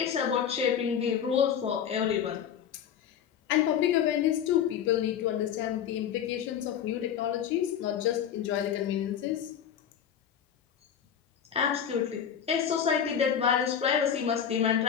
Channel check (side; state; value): right; quieter; 8.7 dB